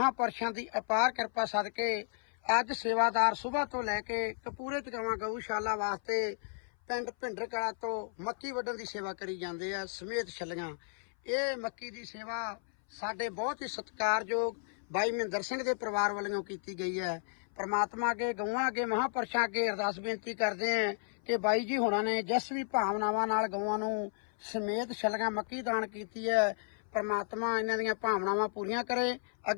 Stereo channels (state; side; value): silent; right; 56 dB below the other